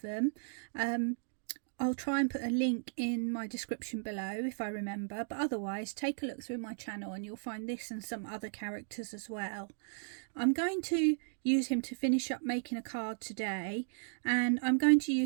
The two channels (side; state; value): left; silent; digital silence